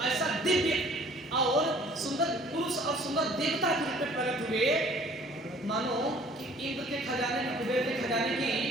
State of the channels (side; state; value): both; normal; correlation 0.53